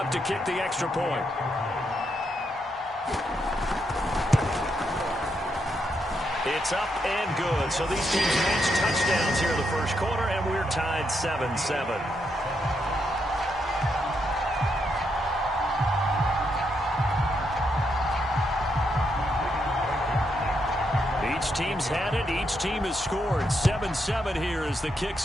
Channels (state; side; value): normal; both; correlation 0.80